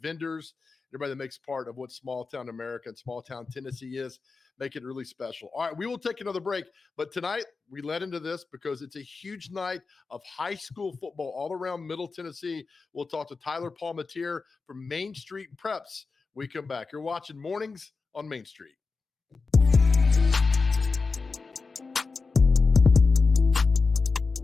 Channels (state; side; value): quieter; right; 4.4 dB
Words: everybody that makes part of what small town America and small town Tennessee is. Make it really special. All right, we will take another break. But tonight, we led into this because it's a huge night of high school football all around Middle Tennessee. We'll talk to Tyler Palmatier from Main Street Preps. We come back. You're watching Mornings on Main Street.